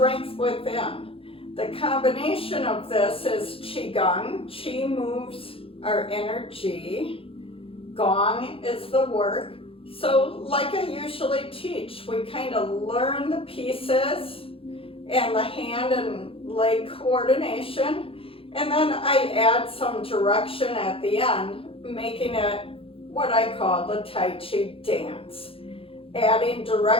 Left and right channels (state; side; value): late; right; 0.27 ms